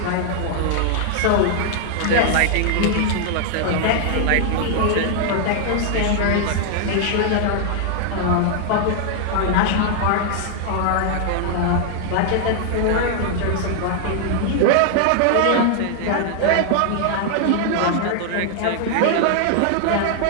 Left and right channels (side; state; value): both; different; correlation 0.00